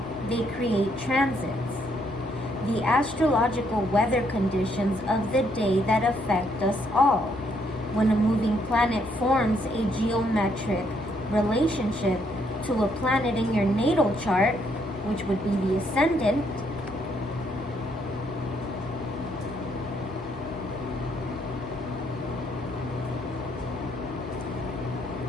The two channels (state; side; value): normal; both; correlation 0.72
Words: they create transits. The astrological weather conditions of the day that affect us all. When a moving planet forms a geometric relationship to a planet in your natal chart, which would be the ascendant,